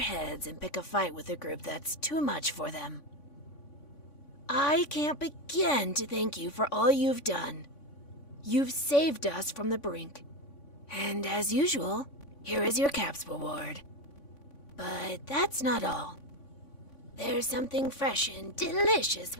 and pick a fight with a group that's too much for them. I can't begin to thank you for all you've done. You've saved us from the brink. And as usual, here is your caps reward. But that's not all. There's something fresh and delicious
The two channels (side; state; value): right; late; 3.5 ms